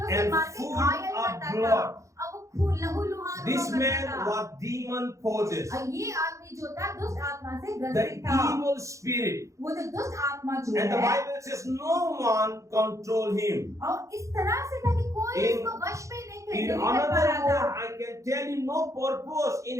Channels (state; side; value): late; left; 0.15 ms